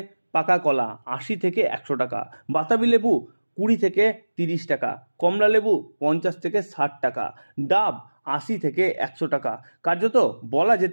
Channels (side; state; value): both; inverted; correlation -1.00